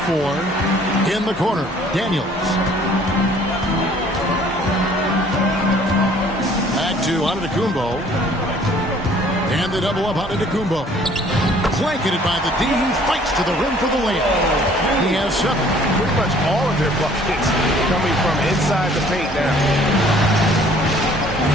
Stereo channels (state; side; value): normal; both; correlation 0.56